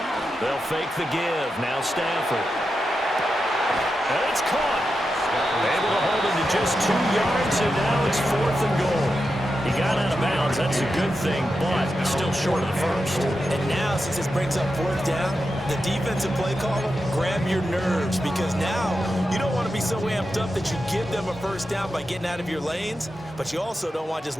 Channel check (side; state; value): both; normal; correlation 0.89